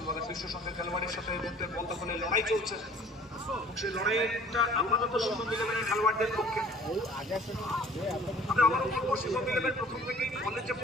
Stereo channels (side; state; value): both; normal; correlation 0.51